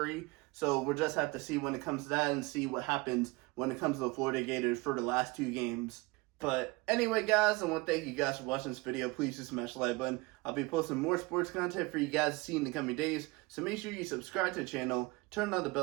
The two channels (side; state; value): left; quieter; 24.3 dB